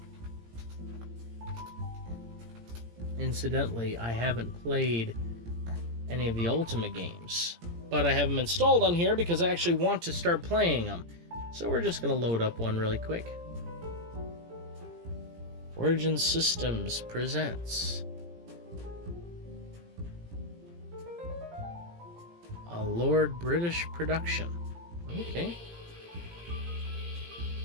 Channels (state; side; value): late; left; 17 ms